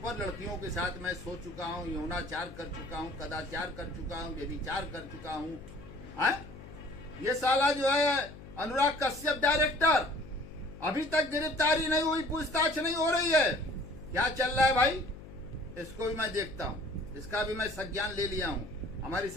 लड़कियों के साथ मैं सो चुका हूँ, यौनाचार कर चुका हूँ, कदाचार कर चुका हूँ, व्यभिचार कर चुका हूँ। ये साला जो है अनुराग कश्यप डायरेक्टर, अभी तक गिरफ्तारी नहीं हुई, पूछताछ नहीं हो रही है। क्या चल रहा है भाई? इसको भी मैं देखता हूँ, इसका भी मैं संज्ञान ले लिया हूँ। हमारी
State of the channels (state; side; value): noise; left; hum, 16 dB below the sound